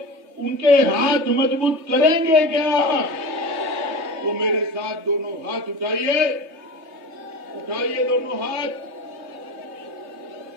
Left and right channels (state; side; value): late; left; 3.2 ms